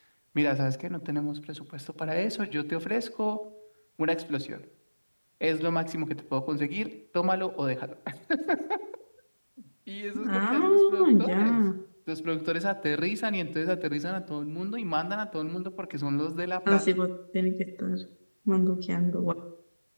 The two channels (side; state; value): both; inverted; correlation -1.00